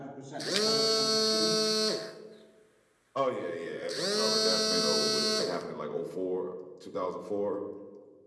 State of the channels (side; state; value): both; identical; correlation 1.00